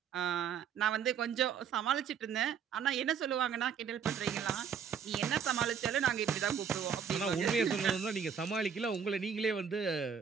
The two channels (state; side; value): quieter; left; 7.2 dB